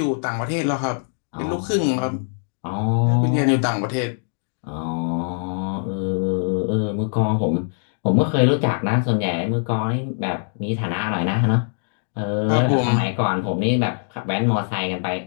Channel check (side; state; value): right; silent; 64 dB below the other